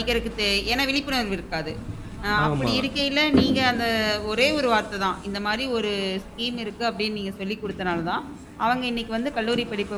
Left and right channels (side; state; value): both; identical; correlation 1.00